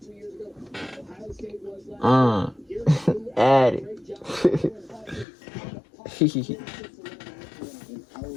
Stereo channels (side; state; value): right; drops out; at 5.2 s